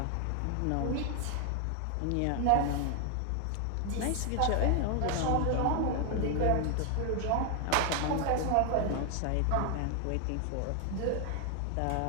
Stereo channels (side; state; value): both; different; correlation 0.01